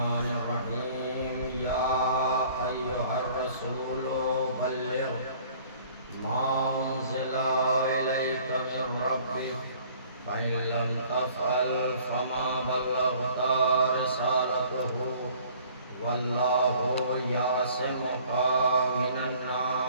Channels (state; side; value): inverted; both; correlation -0.54